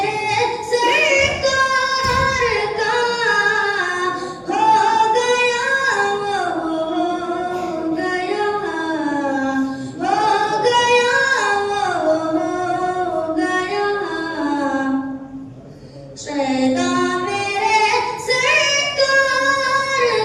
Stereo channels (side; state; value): both; identical; correlation 1.00